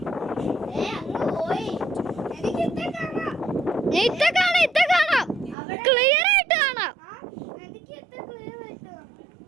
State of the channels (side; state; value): left; drops out; at 5.6 s